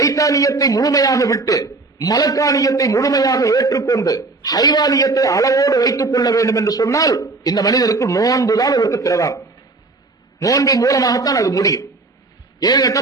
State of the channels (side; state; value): left; quieter; 3.6 dB